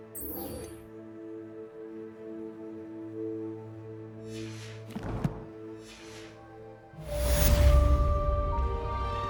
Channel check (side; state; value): both; identical; correlation 1.00